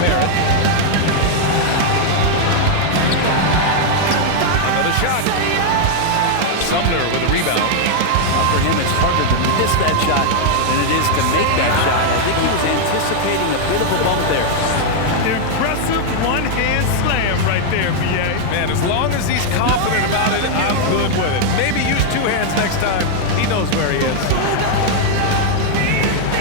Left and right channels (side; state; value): both; different; correlation 0.00